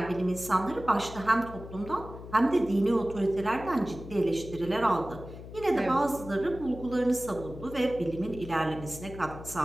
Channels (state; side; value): noise; left; hum, 13 dB below the sound